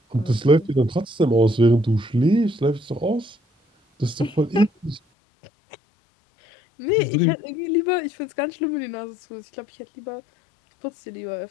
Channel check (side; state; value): right; drops out; at 5.0 s